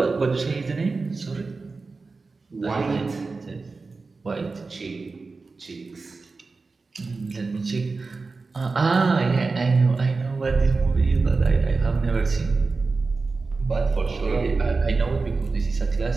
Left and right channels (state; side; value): quieter; left; 4.0 dB